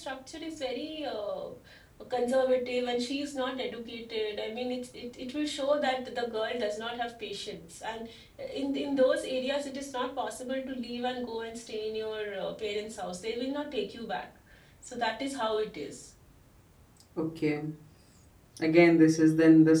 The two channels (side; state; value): both; identical; correlation 1.00